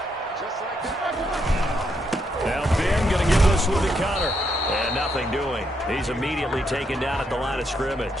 Now Ben going to give this one to Connor. And nothing doing. He's immediately taken down at the line of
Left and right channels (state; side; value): normal; both; correlation 0.78